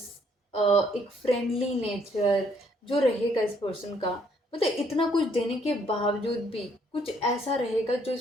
एक फ्रेंडली नेचर जो रहेगा इस पर्सन का, मतलब इतना कुछ देने के बावजूद भी कुछ ऐसा रहेगा जो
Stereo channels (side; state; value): both; normal; correlation 0.67